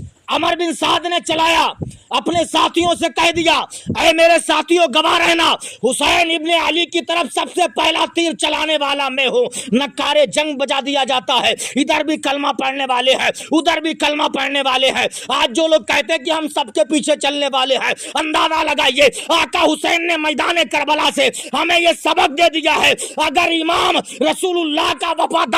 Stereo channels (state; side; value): identical; both; correlation 1.00